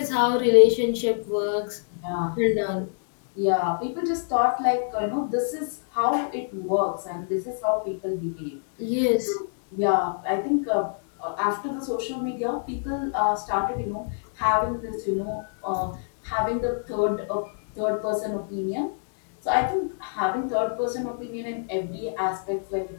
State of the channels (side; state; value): right; silent; digital silence